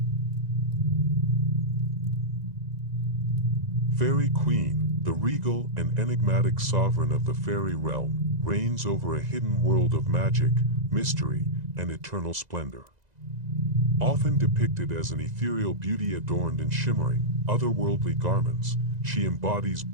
Fairy Queen, the regal and enigmatic sovereign of the fairy realm, reigns over a hidden world of magic, mystery, and eternal splendor. Often depicted as an ethereal beauty adorned in shimmering, otherworldly garments, she embodies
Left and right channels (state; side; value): late; left; 2.0 ms